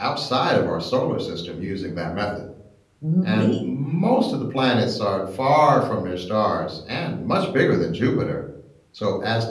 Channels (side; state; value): both; identical; correlation 1.00